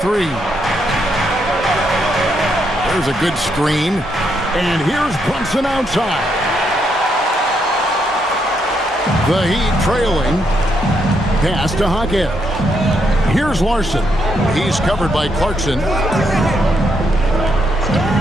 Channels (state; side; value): normal; both; correlation 0.77